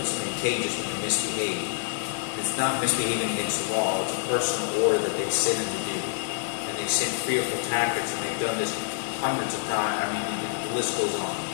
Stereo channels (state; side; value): silent; right; 60 dB below the other